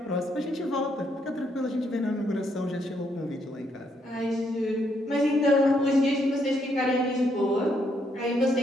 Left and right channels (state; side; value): normal; both; correlation 0.74